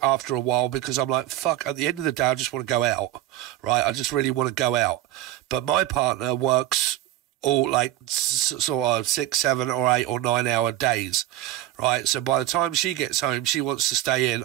after a while because I'm like, fuck, at the end of the day, I just want to go out, right? I just really want to go out. But my partner works all like sort of 6, 7 or 8 or 9 hour days, right? So by the time she gets home, she wants to stay in,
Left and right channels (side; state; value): left; quieter; 14.1 dB